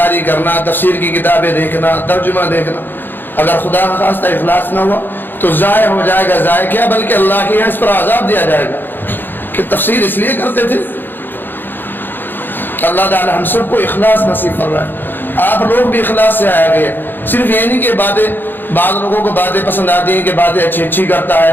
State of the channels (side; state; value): right; late; 0.095 ms